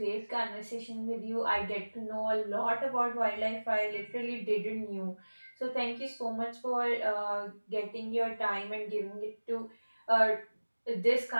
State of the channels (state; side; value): inverted; both; correlation -1.00